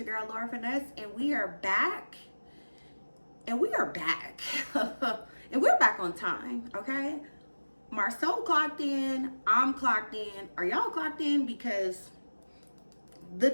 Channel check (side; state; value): both; inverted; correlation -1.00